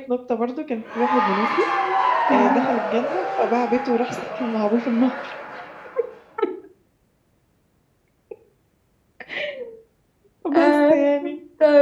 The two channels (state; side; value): identical; both; correlation 1.00